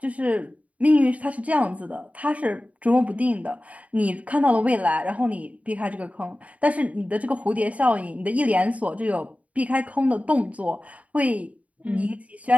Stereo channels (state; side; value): late; left; 0.068 ms